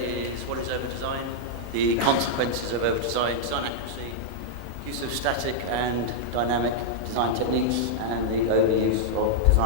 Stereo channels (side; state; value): both; normal; correlation -0.02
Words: is what is over-design, the consequences of over-design, design accuracy, use of static and dynamic design techniques, and the overuse of